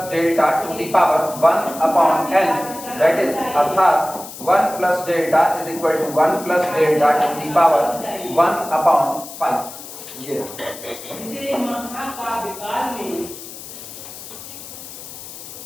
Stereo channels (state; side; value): noise; left; hiss, 13 dB below the sound